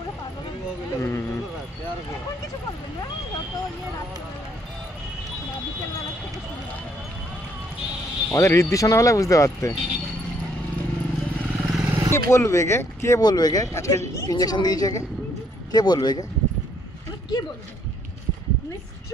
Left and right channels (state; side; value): normal; both; correlation 0.68